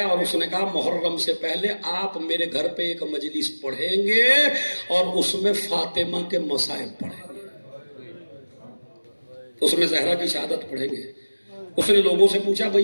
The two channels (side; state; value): both; inverted; correlation -1.00